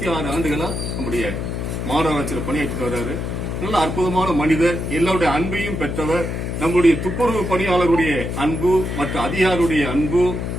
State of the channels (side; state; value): left; noise; hum, 3 dB below the sound